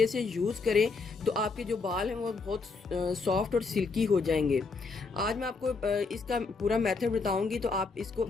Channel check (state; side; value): quieter; right; 4.3 dB